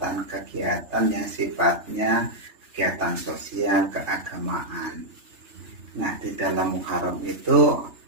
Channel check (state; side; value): late; left; 3.3 ms